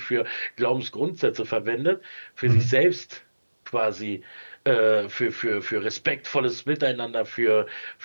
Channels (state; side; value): inverted; both; correlation -1.00